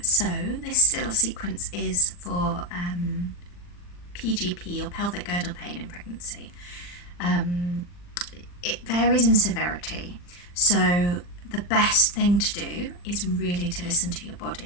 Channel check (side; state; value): right; late; 40 ms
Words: so this little sequence is for PGP or pelvic girdle pain in pregnancy. It varies in severity, so the best thing to do is really to listen to your